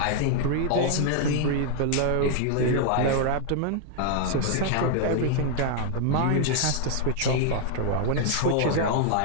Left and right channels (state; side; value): different; both; correlation 0.00